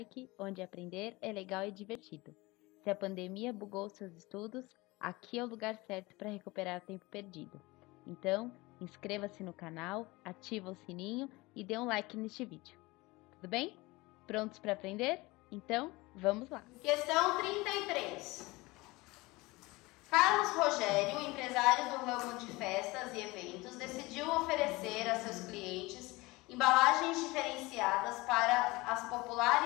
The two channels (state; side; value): quieter; right; 22.2 dB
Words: onde aprender é legal e divertido. Se a pandemia bugou seus estudos, aqui é o lugar certo para recuperar o tempo perdido. Então, inscreva-se no canal, ativa o sininho e dê um like neste vídeo. Tudo bem? Prontos para aprender? Então, vamos lá! Questão 33. Carlos Rogério, empresário do ramo de festas e eventos, decidiu oferecer a seus clientes embalagens diferenciadas para as